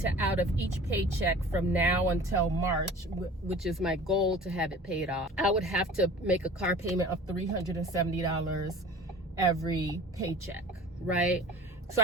out of each paycheck from now until March, which is my goal to have it paid off, I would have to make a car payment of $370 every paycheck, right? So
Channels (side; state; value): both; normal; correlation 0.42